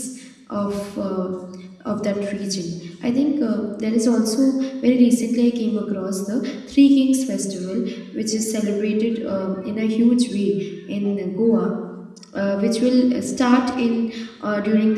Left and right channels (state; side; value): identical; both; correlation 1.00